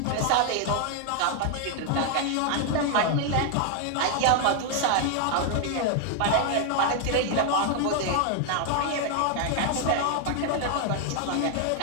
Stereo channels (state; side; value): different; both; correlation 0.00